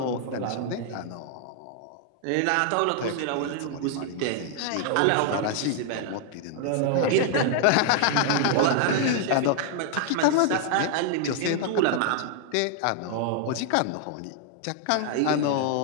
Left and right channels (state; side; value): different; both; correlation 0.00